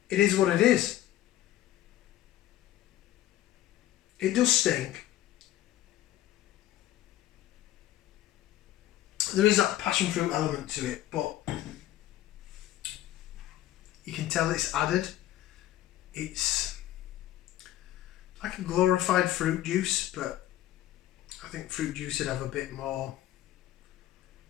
it is what it is. It does stink. There is that passion fruit element to it, but you can tell it's added. It's like a glorified fruit juice, but I think fruit juice would have a bit more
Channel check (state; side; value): quieter; right; 13.6 dB